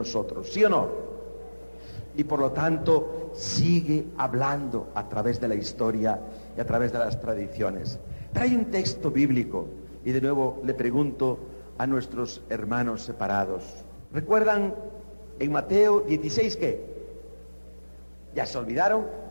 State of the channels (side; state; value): both; inverted; correlation -1.00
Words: ¿sí o no? Y por lo tanto sigue hablando a través de la historia y a través de las tradiciones. Pero hay un texto bíblico, y de nuevo le pregunto a nuestros hermanos separados. ¿Recuerdan en Mateo 16 qué? ¿Ya se olvidaron?